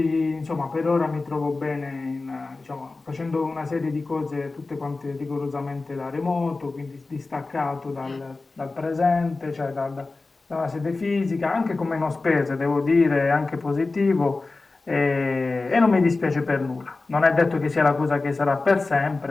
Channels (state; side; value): quieter; right; 3.6 dB